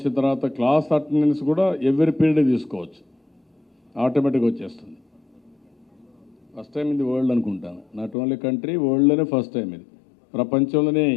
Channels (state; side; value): drops out; right; at 8.2 s